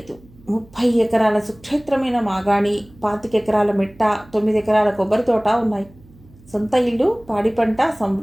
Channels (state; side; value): noise; right; hum, 25 dB below the sound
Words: 30 ఎకరాల సుక్షేత్రమైన మాగాణి, 25 ఎకరాల మెట్ట, 9 ఎకరాల కొబ్బరి తోట ఉన్నాయి. సొంత ఇల్లు, పాడి పంట